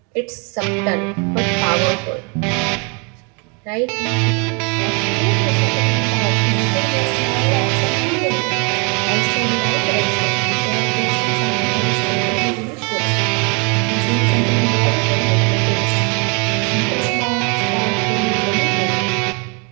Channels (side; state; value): left; quieter; 33.8 dB